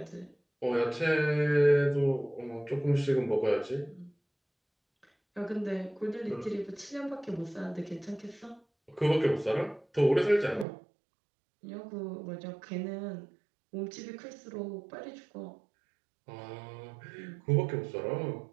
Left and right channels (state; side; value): drops out; left; at 10.7 s